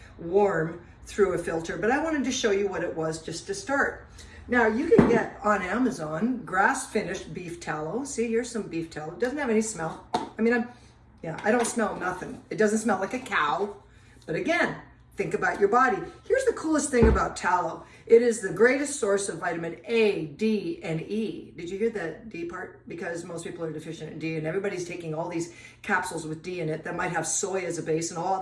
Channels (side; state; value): both; identical; correlation 1.00